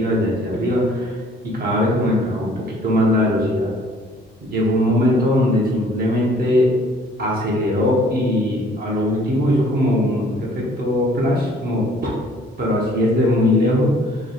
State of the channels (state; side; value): normal; both; correlation 0.57